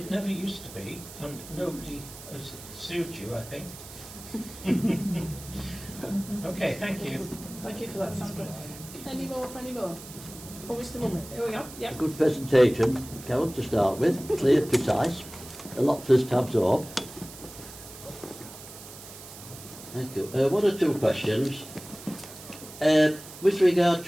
never used to be, and nobody has sued you, I think. Okay, thank you. Thank you for that, Sandra. Any more? Oh, Mr. Mummett, here we go. Yeah. Good presentation, Carol, to start with. Clear, precise. A lot for us to absorb. Thank you. One or two questions. With regard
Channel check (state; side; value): noise; right; hiss, 15 dB below the sound